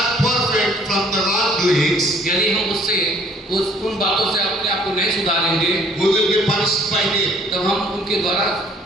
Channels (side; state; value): both; normal; correlation 0.57